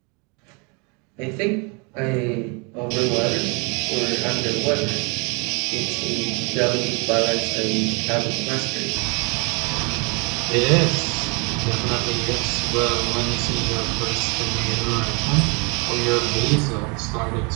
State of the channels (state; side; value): quieter; left; 32.4 dB